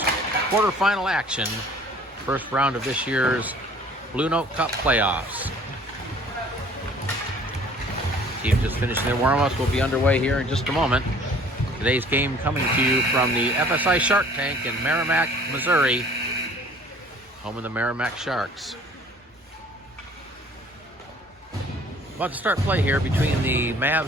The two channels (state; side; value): normal; both; correlation 0.53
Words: quarterfinal action, first round of this year's Blue Note Cup playoffs. Team just finishing their warm-ups. Will be underway here in just a moment. Today's game coming to you from the FSI Shark Tank in Merrimack, Missouri, home of the Merrimack Sharks. About to start play here between the